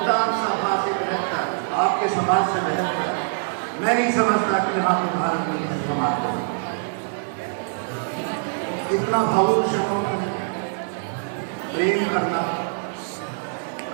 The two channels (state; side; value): silent; left; digital silence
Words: सभा से बेहतर, आपके समाज से बेहतर मैं नहीं समझता कि यहाँ पे भारत में किसी समाज को इतना भावुक क्षणों में प्रेम करना,